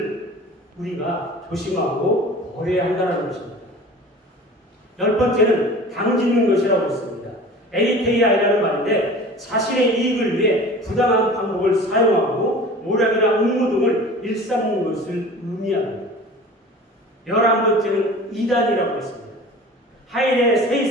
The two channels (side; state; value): both; normal; correlation 0.40